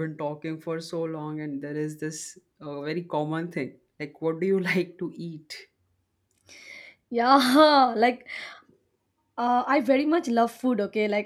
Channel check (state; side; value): identical; both; correlation 1.00